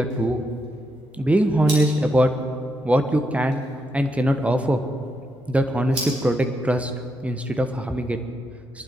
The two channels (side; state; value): both; normal; correlation 0.82